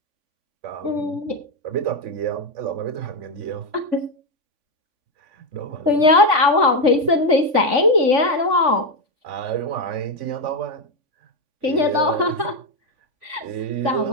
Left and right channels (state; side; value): late; left; 3.5 ms